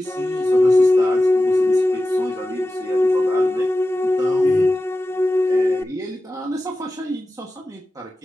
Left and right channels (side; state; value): both; normal; correlation 0.94